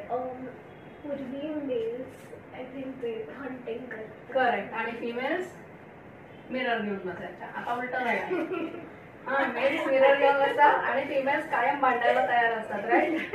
पूर्वी mails I think ते हंटिंग करतात. करेक्ट. आणि फिमेल्स मिरर घेऊन बसायच्या. आता उलट राहील. हा, मेल्स मिरर घेऊन बसतात आणि फिमेल्स कायम भांडायला तयार असतात. राईट.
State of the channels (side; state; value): both; identical; correlation 1.00